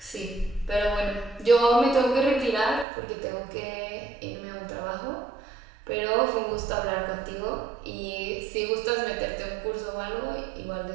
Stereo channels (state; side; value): drops out; left; at 2.9 s